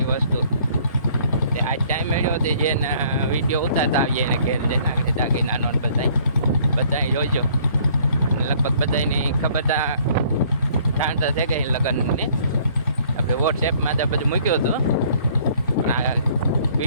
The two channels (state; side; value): inverted; both; correlation -0.60